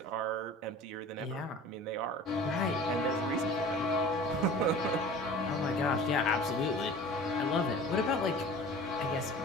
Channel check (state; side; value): normal; both; correlation 0.41